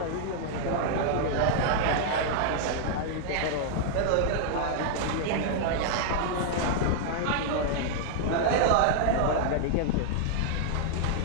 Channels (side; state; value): both; different; correlation -0.01